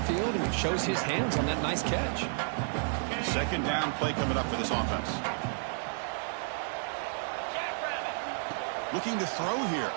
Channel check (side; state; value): left; silent; 57 dB below the other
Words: and shows his hands on that nice catch. 2nd down play coming up for this offense. Looking to throw here.